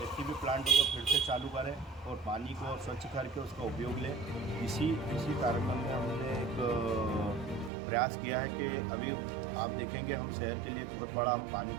STP प्लांटों को फिर से चालू करें और पानी को स्वच्छ करके उसका उपयोग लें। इसी कारण में हमने एक प्रयास किया है कि अभी आप देखेंगे हम शहर के लिए बहुत बड़ा हम पानी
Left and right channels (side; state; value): left; drops out; at 7.7 s